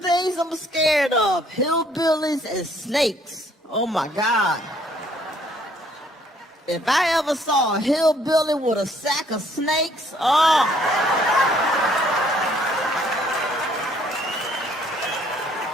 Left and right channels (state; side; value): normal; both; correlation 0.63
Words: I'm scared of, hillbillies and snakes. Oh my God. If I ever saw a hillbilly with a sack of snakes, oh.